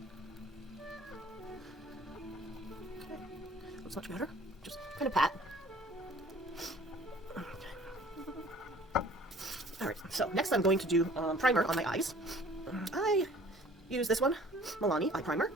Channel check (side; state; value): both; normal; correlation 0.51